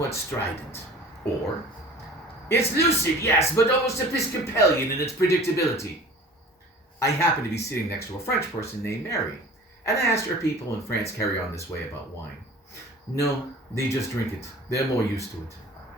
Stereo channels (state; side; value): normal; both; correlation 0.43